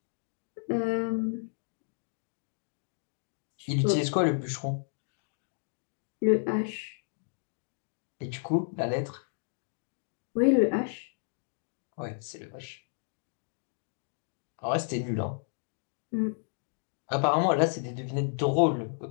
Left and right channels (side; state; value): right; silent; digital silence